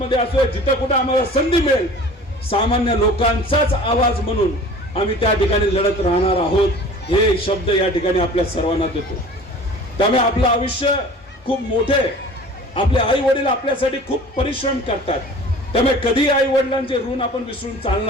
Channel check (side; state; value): both; normal; correlation 0.43